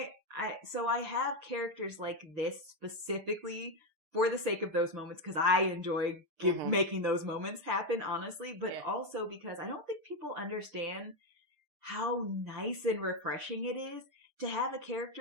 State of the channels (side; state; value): left; late; 6.7 ms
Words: so I have characters like this specifically for the sake of those moments, because I enjoy making those moments happen, honestly, but also because I don't think people understand how nice and refreshing it is to have a